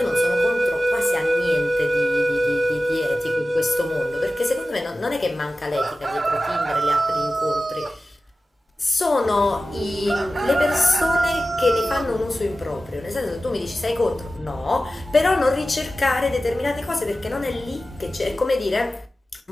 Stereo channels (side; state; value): both; normal; correlation 0.95